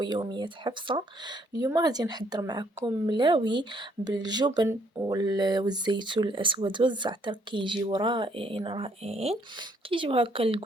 حفصه. اليوم غادي نحضر معكم ملاوي بالجبن والزيتون الاسود والزعتر، كيجيو رائعين رائعين. كيجيو هكا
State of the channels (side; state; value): both; normal; correlation 0.67